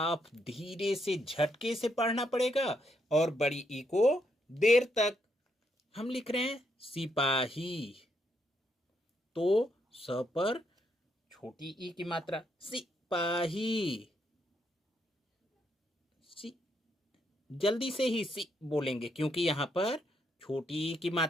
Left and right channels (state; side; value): normal; both; correlation 0.77